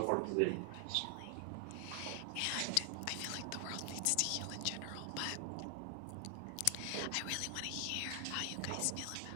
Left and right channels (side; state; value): both; different; correlation 0.00